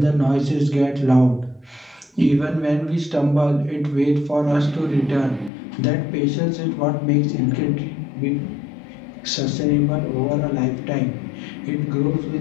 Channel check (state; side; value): drops out; right; at 5.5 s